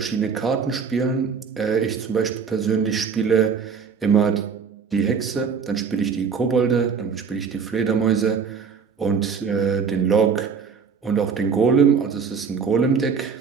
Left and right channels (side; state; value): left; quieter; 6.1 dB